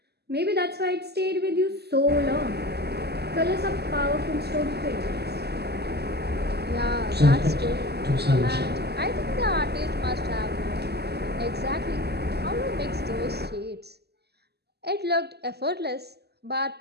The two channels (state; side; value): late; left; 0.47 ms